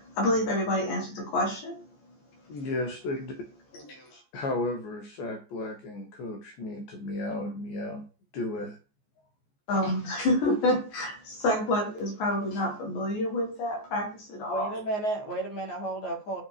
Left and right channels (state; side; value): late; right; 14 ms